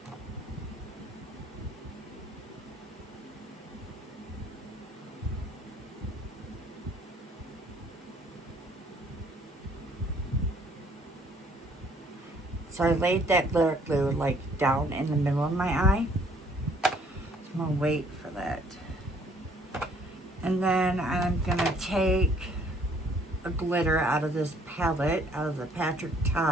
So I laid that glitter glue like down in the middle of my eye. So I'm gonna wait for that. And then I'm gonna take a glitter out of this palette, out of the Patrick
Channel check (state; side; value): normal; both; correlation 0.61